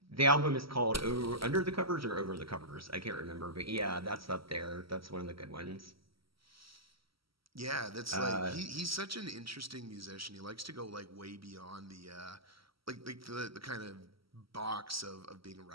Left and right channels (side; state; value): left; late; 0.75 ms